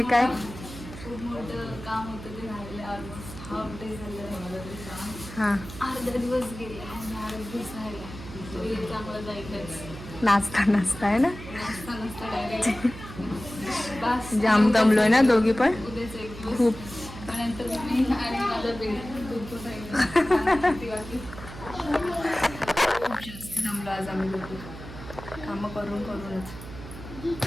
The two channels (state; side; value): noise; right; hum, 13 dB below the sound